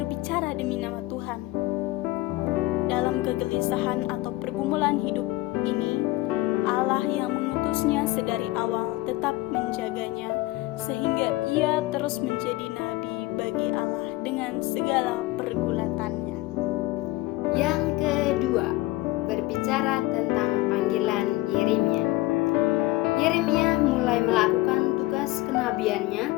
demi nama Tuhan. Dalam kegelisahan atau pergumulan hidup ini, Allah yang mengutusnya sedari awal tetap menjaganya, sehingga ia terus menjadi nabi bagi Allah dengan segala pergulatannya. yang kedua, berbicara tentang panggilan Yeremia. Yeremia mulai melakukan tugas kenabiannya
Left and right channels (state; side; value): quieter; right; 19.0 dB